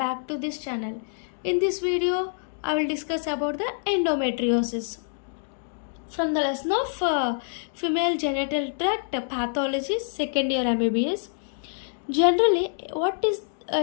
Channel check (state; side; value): silent; right; digital silence